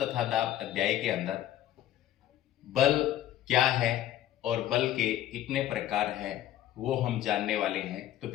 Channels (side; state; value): right; quieter; 12.7 dB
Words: दाब अध्याय के अंदर बल क्या है और बल के कितने प्रकार हैं वो हम जानने वाले हैं। तो